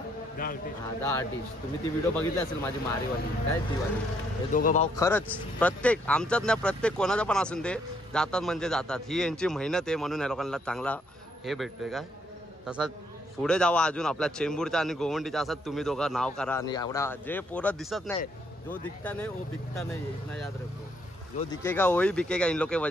हा, द आर्टिस्ट. तुम्ही ती व्हिडिओ बघितली असेल माझी मारीवाली, काय ती वाली. हे दोघं भाऊ खरंच प्रत्येक आमच्यात नाही, प्रत्येक कोणाचं पण असून दे जातात म्हणजे जातात. ही यांची मेहनत आहे म्हणून या लोकांना चांगला हे भेटतोय. काय तसंच पुढे जावा अजून आपल्या चेंबूरचा आणि गोवंडीचा असं तुम्ही दोघं नाव करा. आणि एवढा जे पोरं दिसत नाही, जो दिखता नहीं वो बिकता नहीं, इतना याद रखो. जो दिखेगा वही बिकेगा, इन लोग के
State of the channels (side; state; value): both; normal; correlation 0.71